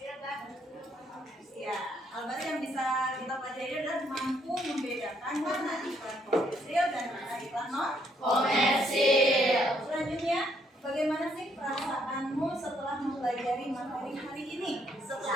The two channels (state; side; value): normal; both; correlation 0.71